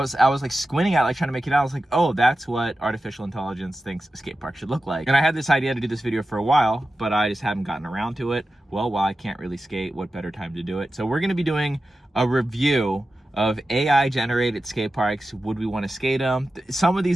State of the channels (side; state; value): both; normal; correlation 0.93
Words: like squinting at it, like trying to make it out. I was like, oh, that's what artificial intelligence thinks a skate park should look like. And I had this idea to do this video for a while, but I just haven't gotten around to it. Well, while I can't really skate, what better time to do it? So we're gonna be doing a review of AI generated skate parks. Would we want to skate them? Some of